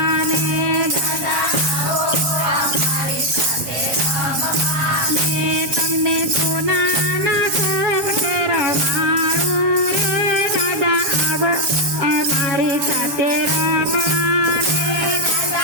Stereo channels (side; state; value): left; late; 7.5 ms